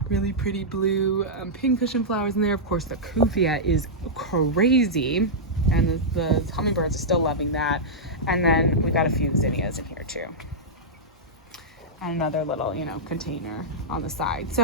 really pretty blue pincushion flowers in there. Of course, the cuvia is crazy, and the hummingbirds are still loving that. And then we got a few zinnias in here too. And another little, you know, container on the side.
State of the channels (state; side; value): normal; both; correlation -0.10